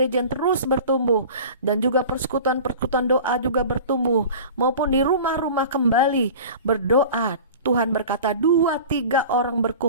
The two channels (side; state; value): both; inverted; correlation -0.39